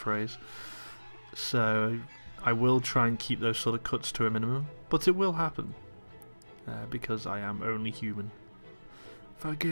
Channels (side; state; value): both; inverted; correlation -1.00